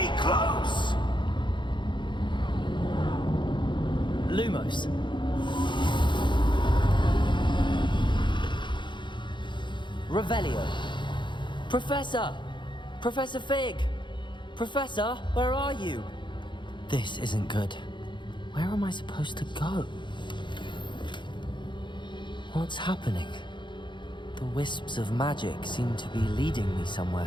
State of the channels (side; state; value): right; late; 0.23 ms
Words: close! Lumos. Revelio. Professor! Professor Fig! Professor, where are you? This isn't good. Where am I supposed to go? What's happening? The wisps of magic seem to be leading me